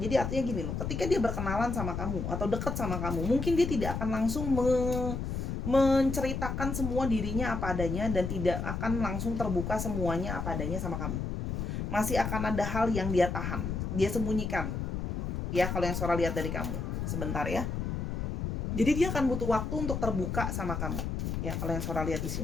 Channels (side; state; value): left; noise; rumble, 3 dB below the sound